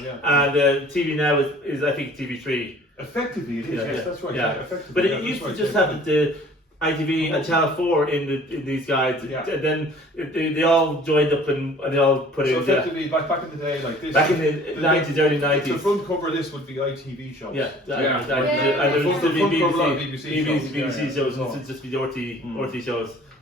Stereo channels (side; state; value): both; normal; correlation 0.50